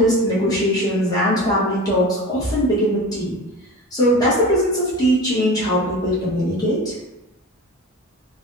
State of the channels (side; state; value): both; normal; correlation 0.33